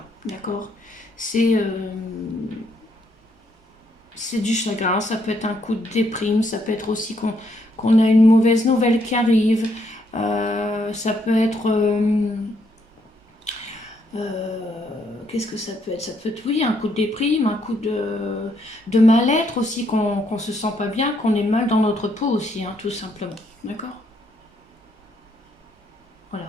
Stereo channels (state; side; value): normal; both; correlation 0.73